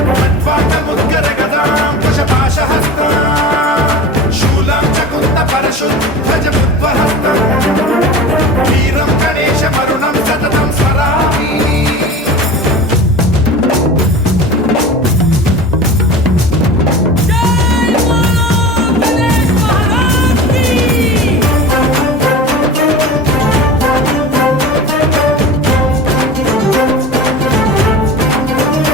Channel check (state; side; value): normal; both; correlation 0.34